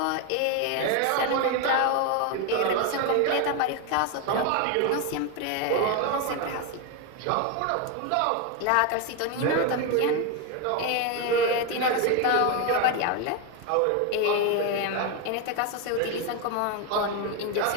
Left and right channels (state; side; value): different; both; correlation 0.02